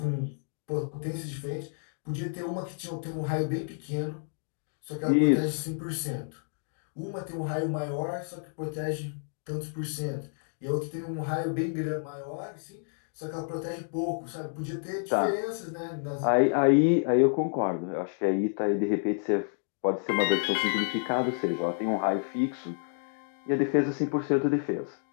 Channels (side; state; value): right; silent; digital silence